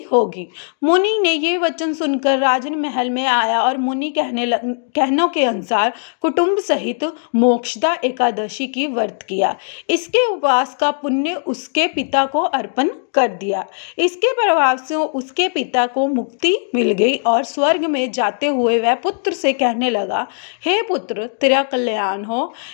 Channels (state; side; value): silent; right; 64 dB below the other